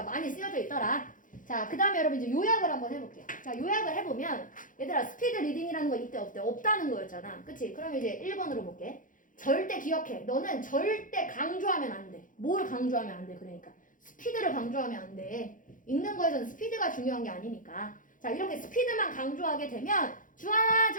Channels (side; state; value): right; late; 0.39 ms